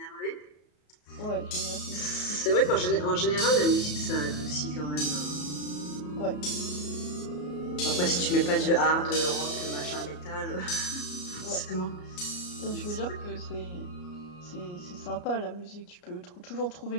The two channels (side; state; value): right; late; 33 ms